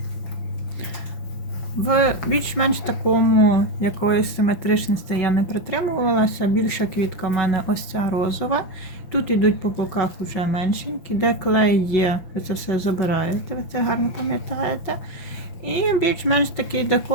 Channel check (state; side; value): late; right; 5.9 ms